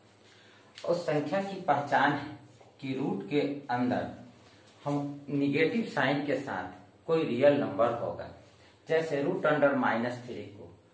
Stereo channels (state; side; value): identical; both; correlation 1.00